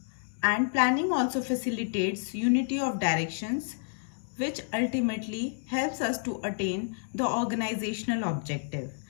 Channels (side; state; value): right; silent; digital silence